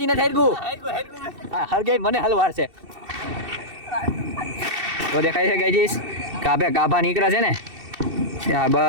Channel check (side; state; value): left; late; 2.7 ms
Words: નથી હરગું. હા હરગાઈ મને હલવાર છે તો દેખાય છે ગાયજીસ. ગાભે ગાભા નીકળે છે ને. હા